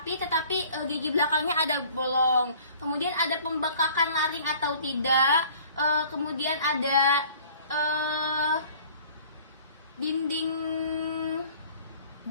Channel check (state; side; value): inverted; both; correlation -0.51